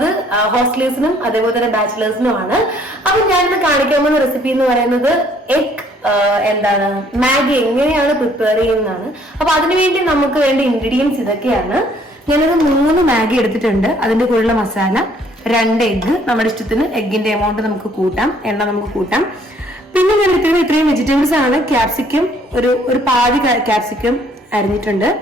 ഹോസ്റ്റലേഴ്സിനും അതേപോലെ തന്നെ ബാച്ചിലേഴ്സിനുമാണ്. അപ്പൊ ഞാനിന്ന് കാണിക്കാൻ പോകുന്ന റെസിപ്പി എന്ന് പറയുന്നത് എഗ് മാഗി എങ്ങനെയാണ് പ്രിപ്പയർ ചെയ്യുന്നതാണ്. അപ്പൊ അതിനുവേണ്ടി നമുക്ക് വേണ്ട ഇൻഗ്രീഡിയൻസ് ഇതൊക്കെയാണ്. ഞാനൊരു 3 മാഗി എടുത്തിട്ടുണ്ട്. അതിന്റെ കൂടെയുള്ള മസാല, 2 എഗ്ഗ്, നമ്മുടെ ഇഷ്ടത്തിന് എഗ്ഗിന്റെ എമൗണ്ട് നമുക്ക് കൂട്ടാം, എണ്ണ നമുക്ക് കൂട്ടാം. പിന്നെ ഞാൻ എടുത്തിരുന്ന ഇത്രയും വെജിറ്റബിൾസ് ആണ്. ക്യാപ്സിക്കം ഒരു പാതി ക്യാപ്സിക്കം അരിഞ്ഞിട്ടുണ്ട്,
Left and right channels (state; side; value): normal; both; correlation 0.62